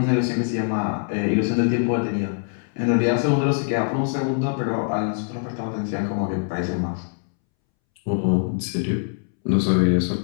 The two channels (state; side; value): silent; right; 63 dB below the other